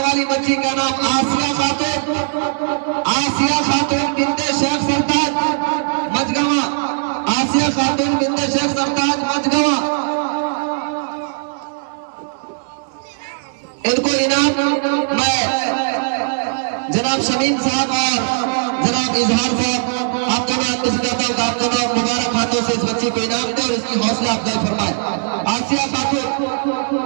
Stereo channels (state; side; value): silent; left; 57 dB below the other